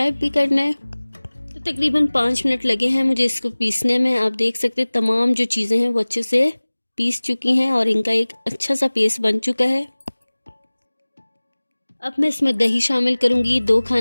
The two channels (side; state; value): both; inverted; correlation -1.00